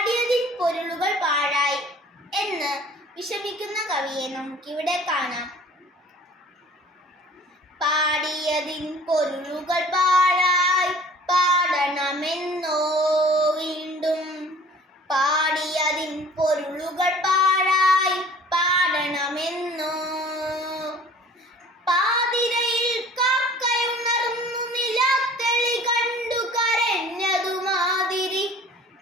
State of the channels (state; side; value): normal; both; correlation 0.49